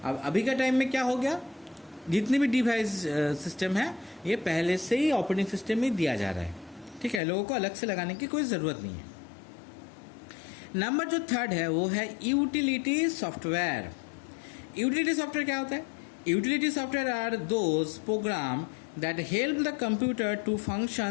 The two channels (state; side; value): drops out; right; at 7.2 s